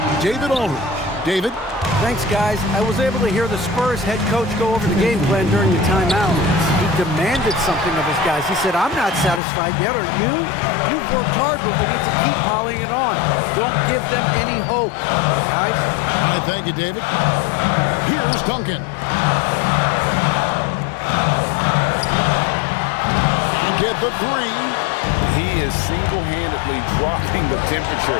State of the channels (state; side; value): drops out; right; at 9.4 s